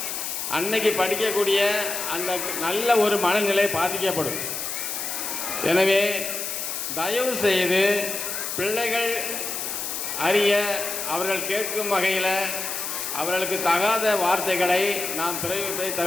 அன்னைக்கு படிக்கக்கூடிய அந்த நல்ல ஒரு மனநிலை பாதிக்கப்படும். எனவே தயவு செய்து பிள்ளைகள் அறிய அவர்கள் கேட்கும் வகையில் அவர்களுக்கு தகாத வார்த்தைகளை நாம் பிரயோகிப்பதை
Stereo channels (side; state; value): left; noise; hiss, 4 dB below the sound